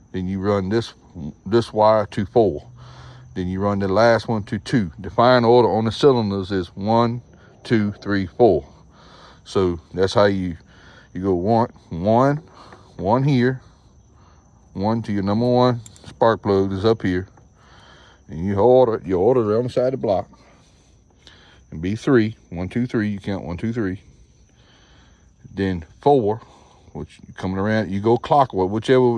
Then you run this wire to 4. Then you run the last one to 2. The firing order on the cylinders is 1, 2, 3, 4. So that's how you go 1 here, 1 to your #1 spark plug is up here. And you order it on the side of the block. And be 3, 1, 2, 3, you count 1, 2, 3. Then 4, which coming around, you go clockwise, whichever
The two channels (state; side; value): identical; both; correlation 1.00